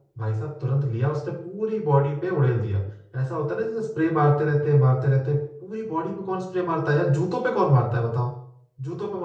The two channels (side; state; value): both; identical; correlation 1.00